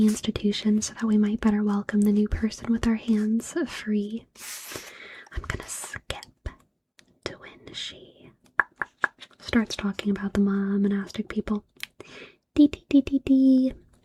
institution so that we might better welcome the new person with our hands free. I'm gonna skip to when she starts talking about the monastic people.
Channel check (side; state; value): both; identical; correlation 1.00